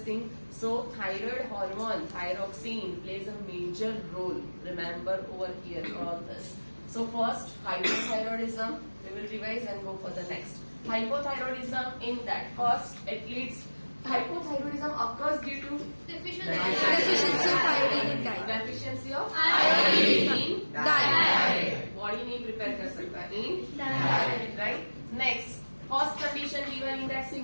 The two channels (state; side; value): inverted; both; correlation -1.00